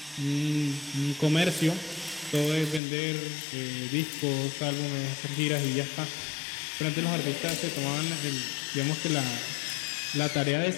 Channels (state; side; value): drops out; right; at 2.8 s